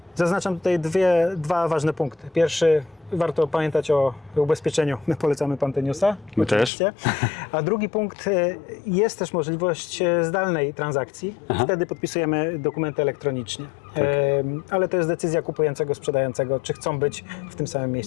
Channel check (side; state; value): right; drops out; at 6.7 s